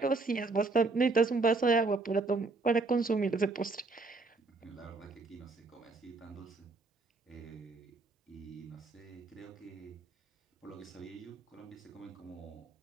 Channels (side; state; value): left; quieter; 3.6 dB